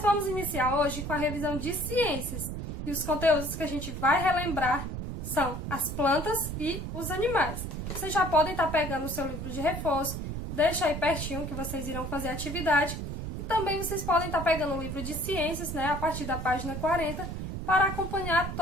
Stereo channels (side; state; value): right; noise; rumble, 5 dB below the sound